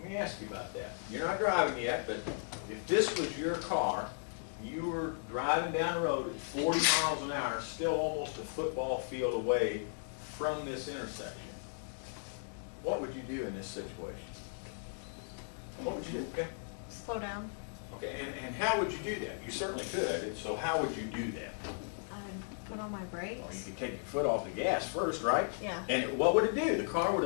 Let me ask you about that. You're not driving yet, but if this was your car, you were driving down the road at 40 miles an hour, still almost a football field away from this intersection, what would you do in this situation? What would you do? Okay. Slow down. Okay, and how would you do that? You certainly could, so how would you do that? I'd put on my Well, you brakes. could take your foot off the gas first, right? Yeah. And what would it do? The car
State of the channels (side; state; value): right; silent; digital silence